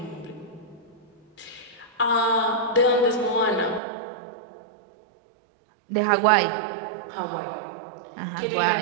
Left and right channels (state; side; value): drops out; left; at 3.8 s